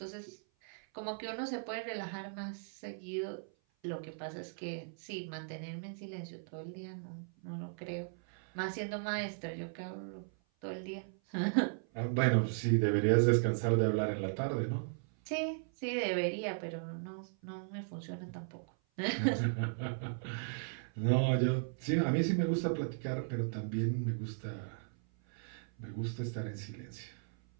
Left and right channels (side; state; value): left; silent; 53 dB below the other